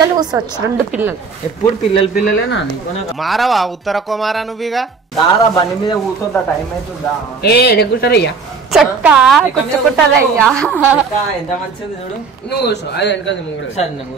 కూర్చోవచ్చు, 2 పిల్లలు. ఎప్పుడు పిల్లలేనా నీకు? మారవా ఉత్తర కుమారా నువ్వుగా దారా బండి మీద కూర్చోద్దా? టైం అవుతుందా? కూర్చోరయ్యా చక్క కూర్చుకుంటారయ్యా. ఎంత మంచిది చూడు. నువ్వు కూర్చో, అది వెనకాల సరే నేను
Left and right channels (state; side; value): quieter; left; 5.0 dB